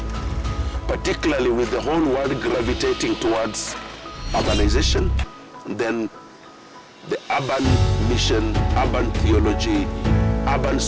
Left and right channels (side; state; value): both; identical; correlation 1.00